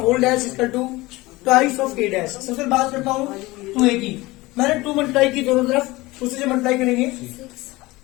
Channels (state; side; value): quieter; right; 20.7 dB